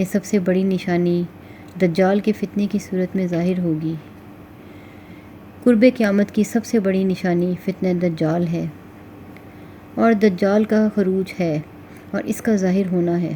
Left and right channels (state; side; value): identical; both; correlation 1.00